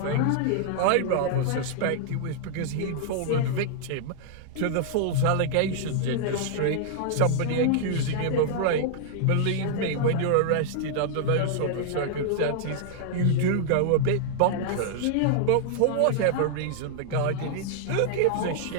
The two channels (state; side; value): different; both; correlation -0.01